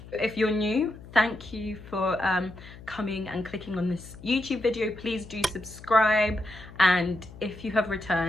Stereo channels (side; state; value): left; noise; hum, 17 dB below the sound